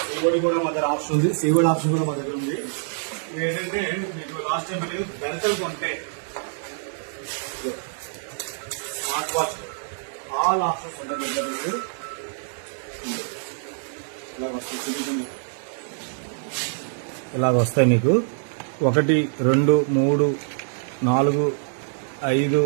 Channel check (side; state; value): left; silent; digital silence